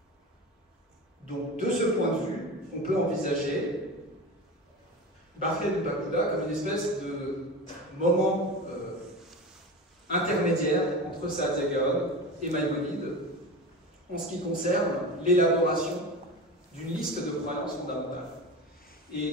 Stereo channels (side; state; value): both; normal; correlation 0.28